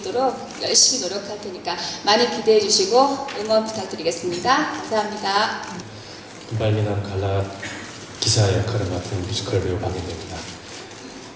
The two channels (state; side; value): identical; both; correlation 1.00